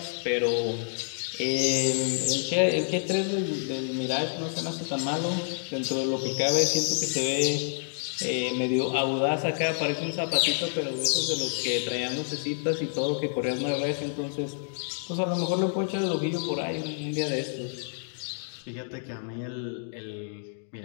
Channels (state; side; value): silent; right; digital silence